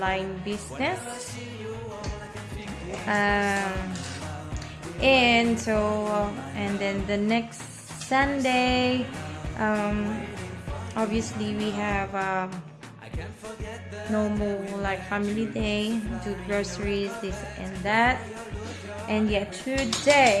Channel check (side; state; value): both; identical; correlation 1.00